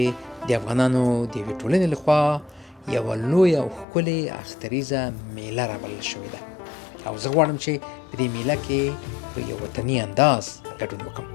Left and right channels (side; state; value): right; drops out; at 3.9 s